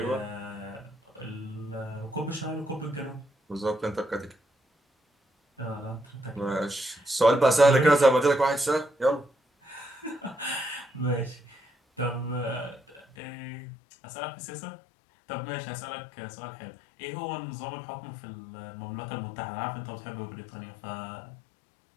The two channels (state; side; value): drops out; right; at 13.2 s